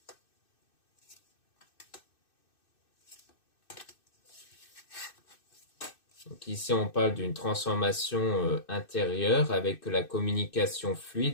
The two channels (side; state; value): right; late; 2.6 ms